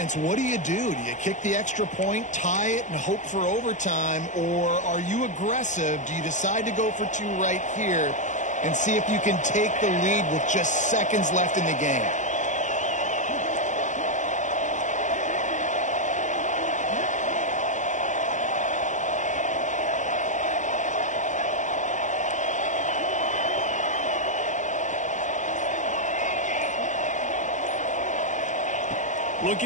what do? Do you kick the extra point, tie it, and hope for overtime? Or are you aggressive? Do you decide to go for two right here and see if you can take the lead with just seconds left in the game?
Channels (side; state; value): right; late; 0.36 ms